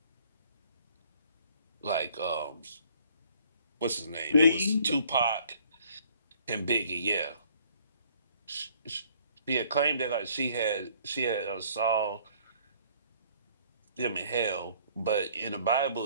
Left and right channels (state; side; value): inverted; both; correlation -0.59